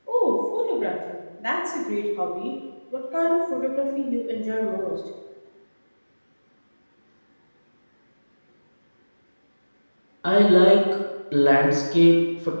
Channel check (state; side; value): inverted; both; correlation -1.00